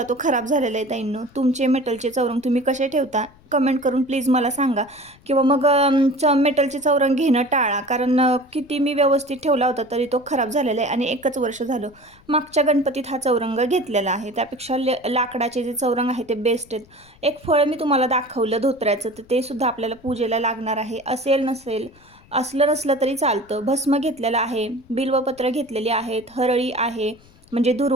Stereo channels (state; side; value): noise; left; rumble, 28 dB below the sound